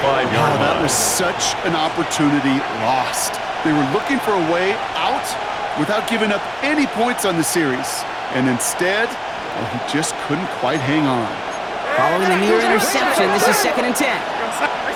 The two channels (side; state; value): both; identical; correlation 1.00